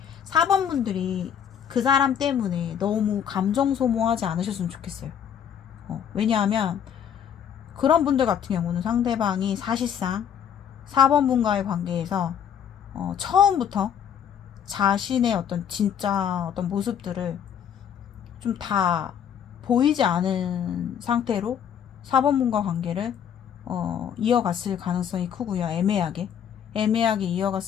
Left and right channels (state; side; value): quieter; right; 8.6 dB